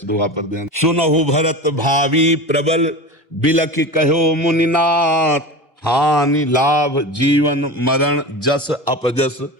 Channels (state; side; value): normal; both; correlation 0.29